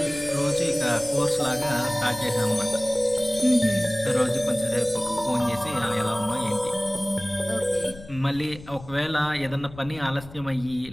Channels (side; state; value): left; noise; rumble, 18 dB below the sound